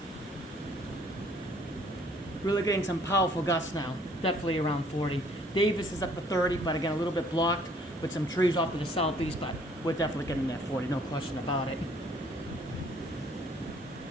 Really getting some powerful gusts now. Definitely around 40. Davis is up to 30, but again, a little bit blocked with some trees off to the southeast, but we're definitely getting that 40, no question about it.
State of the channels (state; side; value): normal; both; correlation 0.60